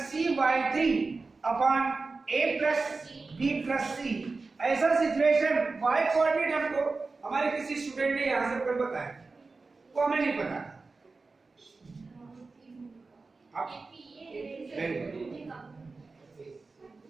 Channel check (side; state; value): left; quieter; 3.9 dB